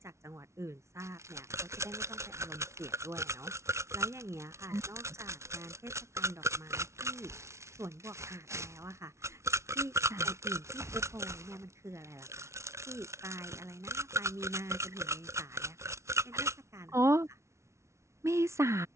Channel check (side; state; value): left; late; 0.13 ms